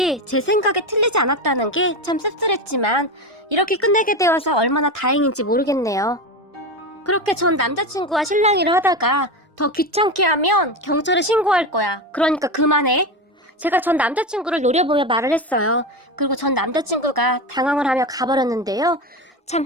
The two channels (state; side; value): normal; both; correlation 0.19